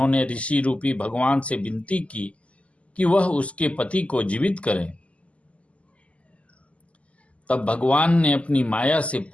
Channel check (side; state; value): right; late; 0.063 ms